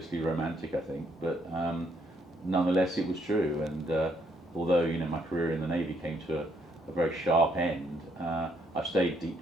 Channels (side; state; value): both; normal; correlation 0.71